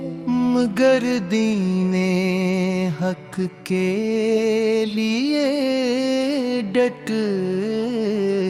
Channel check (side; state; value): both; identical; correlation 1.00